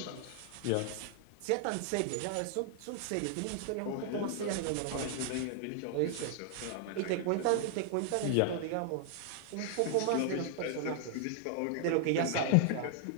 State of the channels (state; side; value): different; both; correlation 0.00